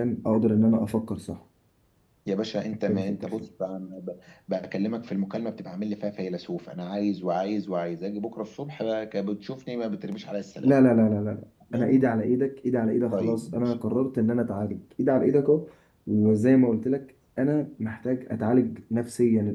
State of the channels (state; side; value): identical; both; correlation 1.00